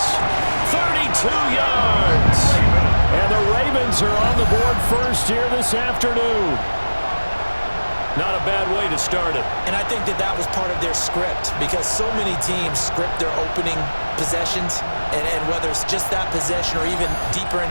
32 yards. And the Ravens are on the board first here this afternoon. Not a bad way to start it. And I think that that was part of their script, because so many teams script their opening possessions, and whether it's just that possession or even deeper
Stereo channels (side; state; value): both; inverted; correlation -1.00